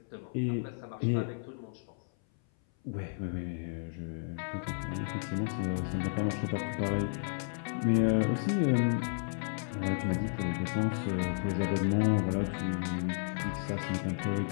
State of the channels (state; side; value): silent; right; 56 dB below the other